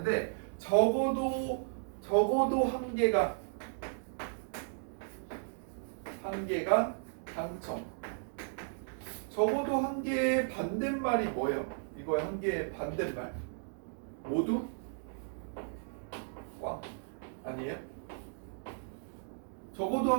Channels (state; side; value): silent; left; digital silence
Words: 적어도 한 개가 당첨. 적어도 한 개의 반대말이 뭐예요? 이거의 한 개의 반대말. 모두 꽝 아니에요? 적어도